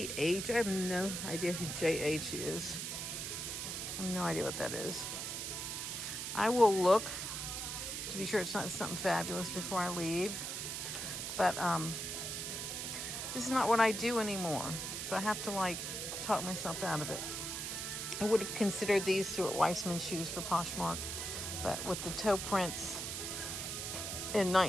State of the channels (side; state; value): right; noise; hiss, 4 dB below the sound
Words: I have no idea who JH is. I have no idea what that is. I will look to be sure it's not something fabulous before I leave. But this is not what I do anymore. So I have to talk myself out of it. I would have considered these Stuart Weitzman shoes for Poshmark, but with the toe prints and